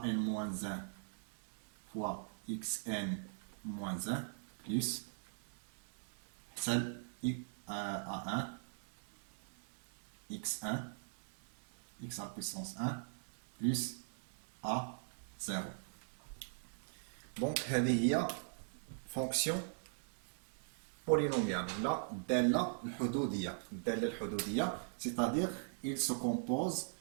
n moins 1 fois xn moins 1 plus celle a1 x1 x à la puissance 1 plus a0. Donc هذه هي fonction polynomiale. Là, الدالة الحدودية, c'est-à-dire il se compose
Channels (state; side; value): silent; left; digital silence